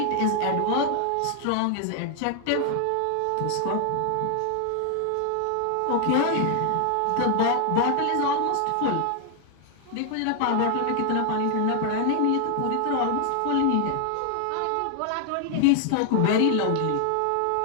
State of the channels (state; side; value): different; both; correlation 0.00